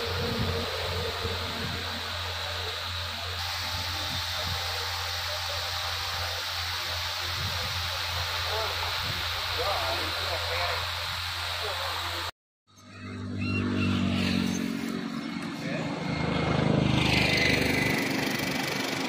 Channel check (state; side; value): identical; both; correlation 1.00